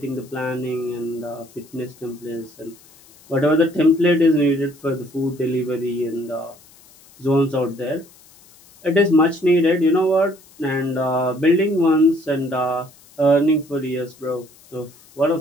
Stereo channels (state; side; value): noise; left; hiss, 26 dB below the sound